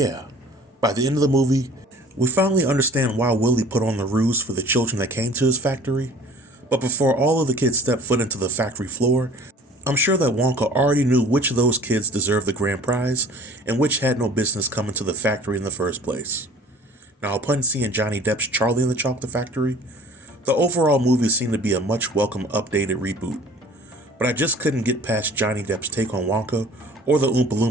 by the end of the movie, we finally understand why Willy put on the ruse for the children that came to his factory. But before all of the kids stepped foot into the factory floor, I'm sure that Wonka already knew which of those kids deserved the grand prize and which had no business coming to the factory in the first place. Now, upon seeing Johnny Depp's Charlie and the Chocolate Factory, the overall movie seemed to be a much welcome updated reboot. But I just couldn't get past Johnny Depp's take on Wonka, or the Oompa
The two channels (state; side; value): normal; both; correlation 0.47